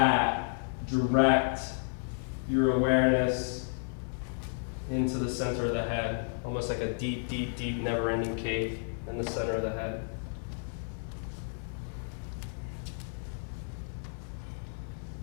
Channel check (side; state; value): right; silent; digital silence